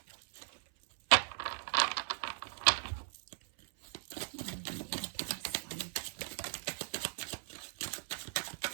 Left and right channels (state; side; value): silent; left; 53 dB below the other